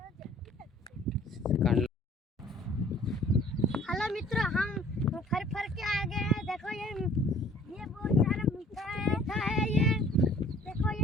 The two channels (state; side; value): normal; both; correlation 0.54